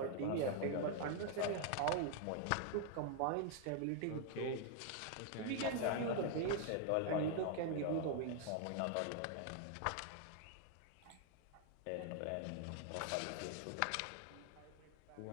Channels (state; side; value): different; both; correlation 0.00